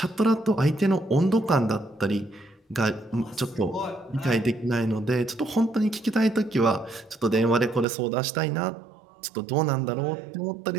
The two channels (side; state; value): left; drops out; at 7.9 s